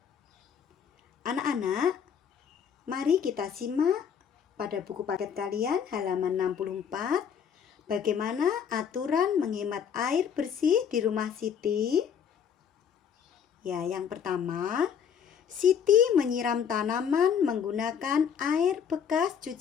Anak-anak, mari kita simak pada buku paket kalian halaman 64. Bagaimana aturan menghemat air bersih di rumah Siti? Ya, yang pertama, Siti menyiram tanaman menggunakan air bekas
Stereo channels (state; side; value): quieter; right; 7.6 dB